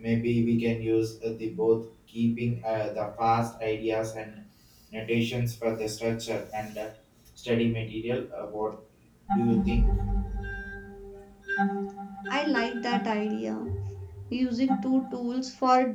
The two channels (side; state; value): both; identical; correlation 1.00